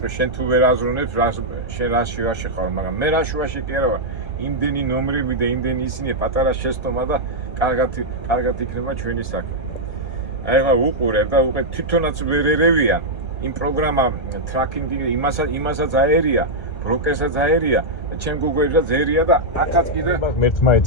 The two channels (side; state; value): right; late; 1.3 ms